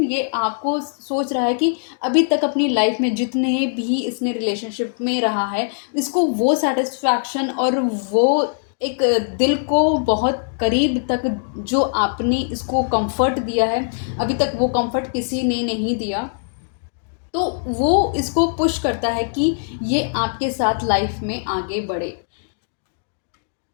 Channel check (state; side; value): silent; right; digital silence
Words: ये आपको सोच रहा है कि अभी तक अपनी लाइफ में जितने भी इसने रिलेशनशिप में रहा है, इसको वो सेटिस्फैक्शन और वो एक दिल को बहुत करीब तक जो आपने इसको कंफर्ट दिया है, अभी तक वो कंफर्ट किसी ने नहीं दिया। तो वो इसको पुश करता है कि ये आपके साथ लाइफ में आगे बढ़े।